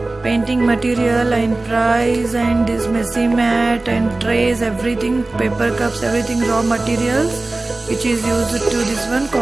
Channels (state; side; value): quieter; left; 3.1 dB